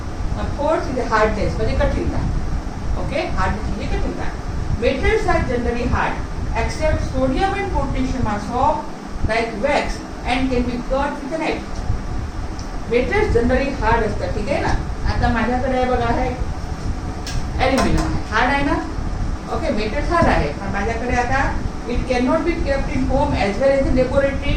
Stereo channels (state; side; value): identical; both; correlation 1.00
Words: Now fourth is the hardness, म्हणजे कठीणता. Okay? Hardness म्हणजे कठीणता. Metals are generally hard, except sodium and potassium are soft like wax and can be cut with a knife. Metals generally hard असतात. ठीक आहे ना? आता माझ्याकडे बघा आहे ॲल्युमिनियम आहे. हार्ड आहे ना? ओके, मेटल्स हार्ड आहे. पण माझ्याकडे आता it can not be kept in home as well as in laboratory.